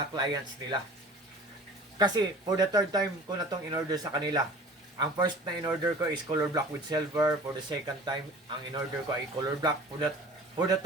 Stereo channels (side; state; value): both; normal; correlation 0.44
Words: clients nila. Kasi for the third time ko na tong in-order sa kanila. Ang first na in-order ko is color black with silver. For the second time, ang in-order ko ay color black. For the